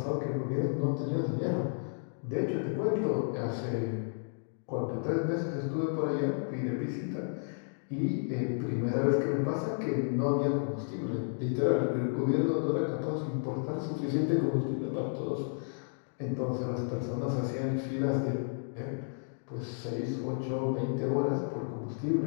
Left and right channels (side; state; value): right; silent; digital silence